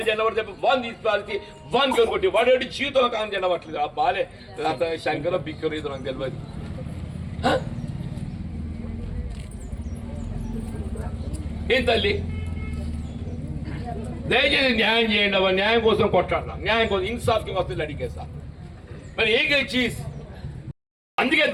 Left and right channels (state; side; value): identical; both; correlation 1.00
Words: జెండా చెప్పి వాన్ తీసుకు వాన్ కొట్టి వాడు జీవితంలో కాంగ్రెస్ జెండా పట్టలేదు. ఆ బాలే శంకర బిక్కరు ఇది నాకు తెలియదు. ఏం తల్లి దయచేసి న్యాయం చేయండి అవ్వ. న్యాయం కోసం కొట్లాడదాం, న్యాయం కోసం ఇన్సాఫ్కి వస్తుంది అడిగేస్తా. మరి ఏ చీజ్ అందుకే